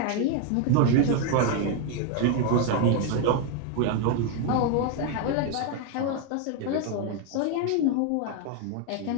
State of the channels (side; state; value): both; different; correlation 0.01